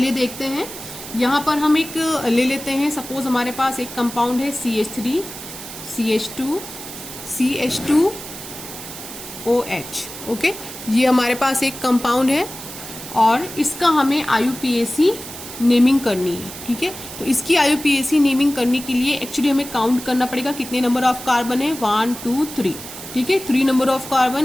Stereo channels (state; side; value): noise; right; hiss, 12 dB below the sound